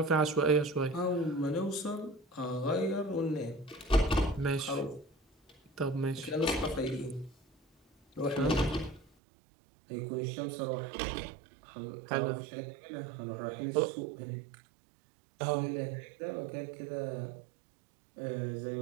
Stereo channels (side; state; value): left; drops out; at 9.1 s